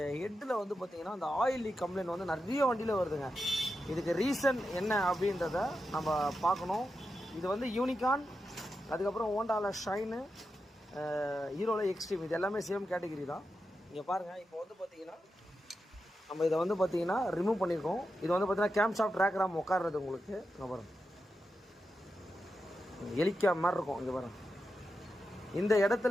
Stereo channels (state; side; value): normal; both; correlation 0.89